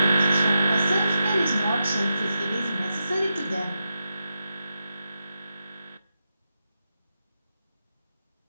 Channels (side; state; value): both; inverted; correlation -0.88